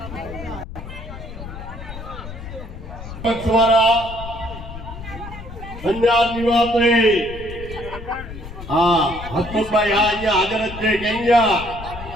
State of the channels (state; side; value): noise; left; rumble, 11 dB below the sound